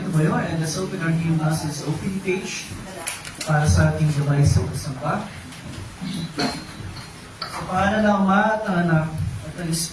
tumayo and let's open our new Masses opening page para sa ating gabay sa pasampa. Sa pangalan ng Ama at ng Anak at ng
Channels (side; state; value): both; identical; correlation 1.00